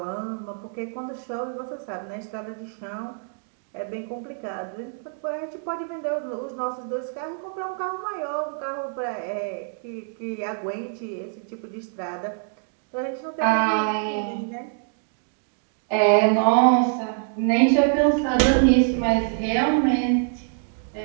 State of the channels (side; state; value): left; silent; 61 dB below the other